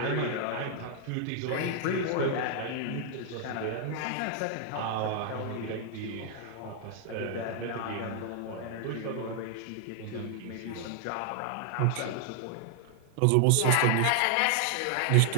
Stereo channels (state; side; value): different; both; correlation 0.00